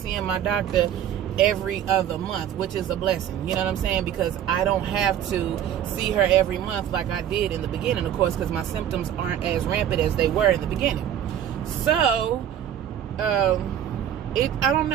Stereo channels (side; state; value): left; quieter; 10.1 dB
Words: my doctor every other month, which is a blessing. You know what I'm saying? Because I don't have to see her every month like I did in the beginning, of course, because my symptoms aren't as rampant as they were in the beginning. So I don't